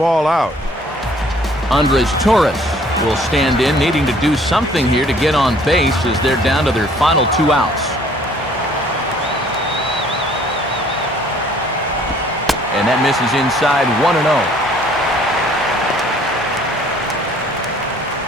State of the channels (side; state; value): both; normal; correlation 0.57